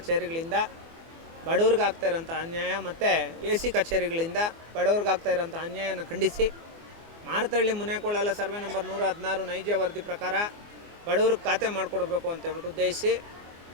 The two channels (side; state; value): left; late; 24 ms